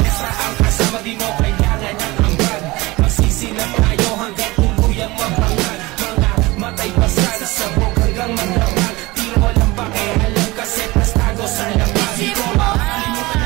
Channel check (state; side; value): quieter; left; 21.6 dB